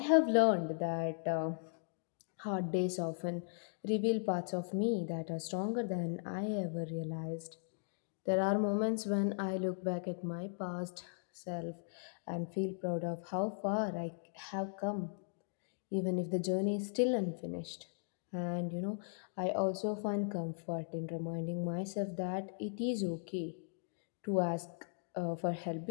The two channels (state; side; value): silent; right; digital silence